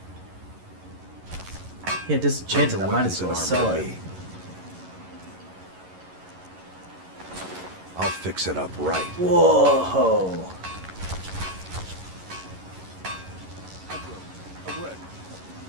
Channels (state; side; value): late; left; 11 ms